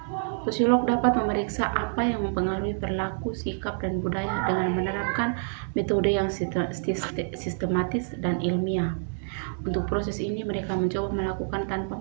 sosiolog dapat memeriksa apa yang mempengaruhi perilaku, sikap, dan budaya dengan menerapkan metode yang sistematis dan ilmiah. Untuk proses ini, mereka mencoba melakukan tanpa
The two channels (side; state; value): left; silent; 60 dB below the other